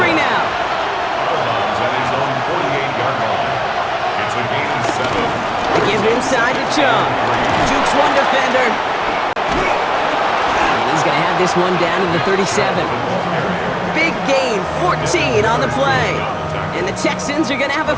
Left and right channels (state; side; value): identical; both; correlation 1.00